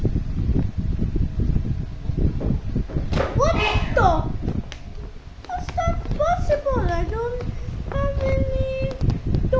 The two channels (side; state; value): both; identical; correlation 1.00